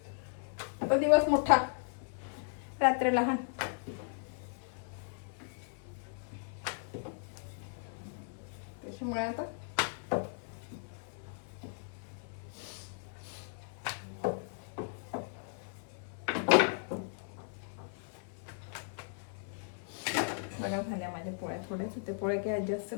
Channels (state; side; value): silent; right; 53 dB below the other